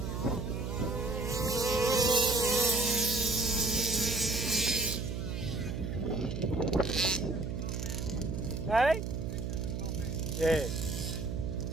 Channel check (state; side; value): noise; right; hum, 3 dB below the sound